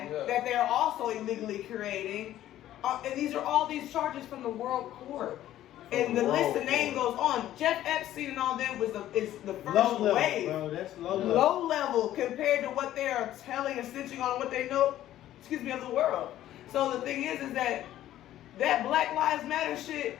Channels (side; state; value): right; quieter; 13.0 dB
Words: that they're also illegally creating. And these are all these charges from the world court. And the list of names goes on. Jeff Epstein and all them is the first low level, wave. bro. That's low level. Low level compared to what they are telling and stitching on what they know, of the world. So the thing is that Black Lives Matter shit,